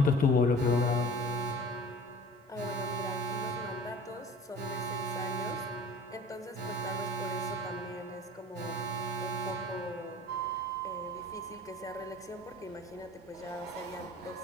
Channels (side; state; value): both; normal; correlation 0.43